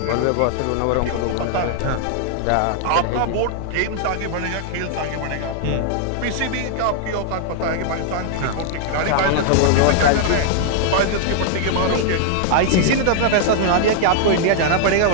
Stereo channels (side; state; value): both; different; correlation -0.01